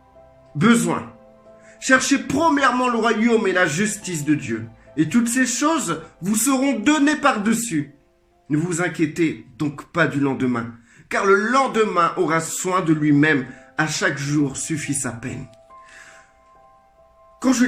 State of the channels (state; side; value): identical; both; correlation 1.00